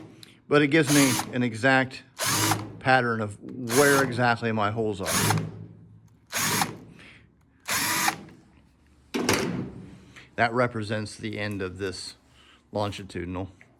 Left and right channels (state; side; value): identical; both; correlation 1.00